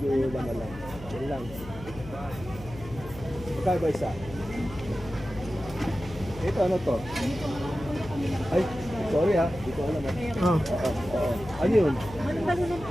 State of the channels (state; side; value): noise; left; hum, 15 dB below the sound